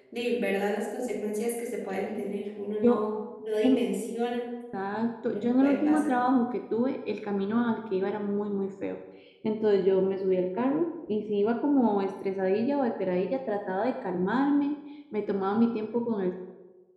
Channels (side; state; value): both; identical; correlation 1.00